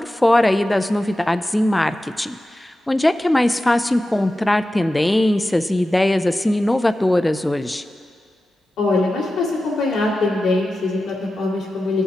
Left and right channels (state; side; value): normal; both; correlation 0.93